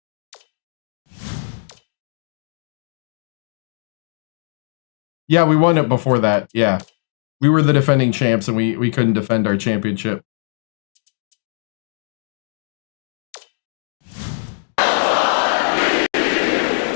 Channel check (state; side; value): silent; right; digital silence